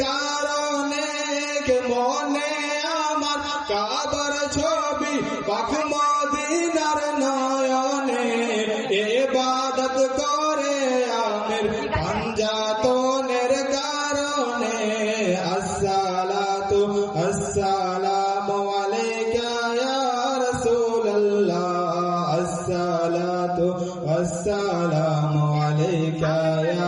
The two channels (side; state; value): both; identical; correlation 1.00